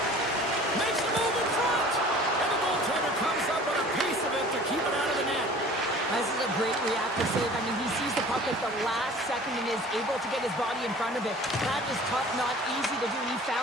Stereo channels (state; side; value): normal; both; correlation 0.46